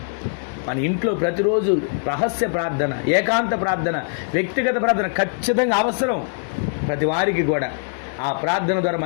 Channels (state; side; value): silent; right; digital silence